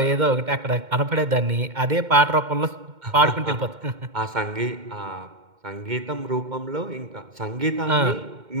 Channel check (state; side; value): late; left; 2.1 ms